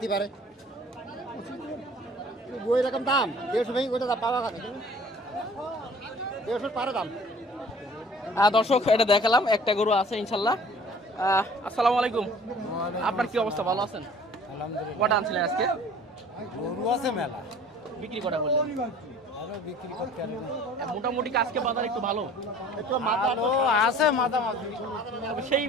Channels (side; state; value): both; normal; correlation 0.49